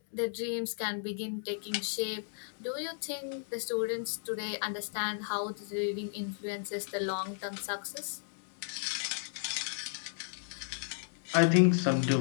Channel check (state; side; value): silent; right; digital silence